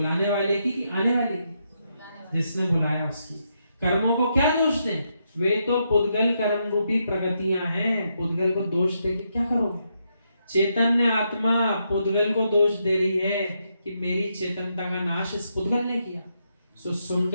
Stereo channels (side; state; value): both; inverted; correlation -0.80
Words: वाले की कि आने वाले की? जिसने बुलाया उसकी। कर्मों को क्या दोष दें? वे तो पुद्गल कर्म रूपी प्रगतियां हैं, पुद्गल को दोष दे के क्या करोगे? चैतन्य आत्मा पुद्गल को दोष दे रही है कि मेरी चेतनता का नाश इस पुद्गल ने किया। सो